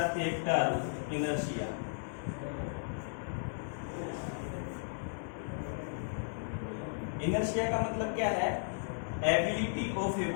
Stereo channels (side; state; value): right; silent; 54 dB below the other